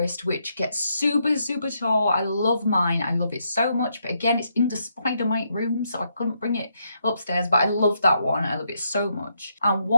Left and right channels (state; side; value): inverted; both; correlation -0.78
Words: which gets super, super tall. I love mine. I love it so much. But again, it's in the spider mite room, so I couldn't bring it upstairs. But I love that one. I love it so much. And